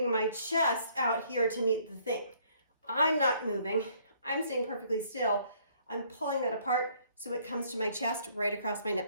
my chest out here to meet the thing. I'm not moving. I'm staying perfectly still. I'm pulling that apart so it comes to my chest right across my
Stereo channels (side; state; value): both; inverted; correlation -0.63